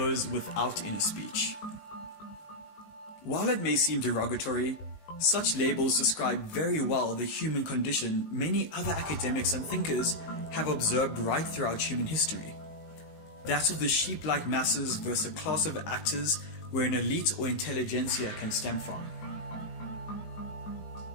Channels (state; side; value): late; right; 19 ms